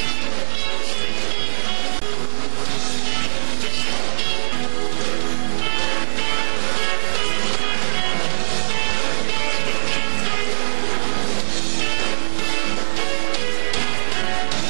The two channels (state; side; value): quieter; left; 34.6 dB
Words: burnouts, we have street kahana, car events for the participants that run live to do. Even our bikini contest, some of the street machine things are really open on the bikini and they let them wear whatever they want. We have it to where the